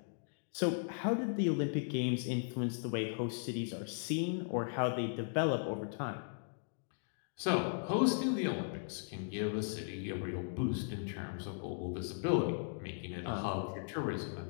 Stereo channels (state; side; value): silent; right; digital silence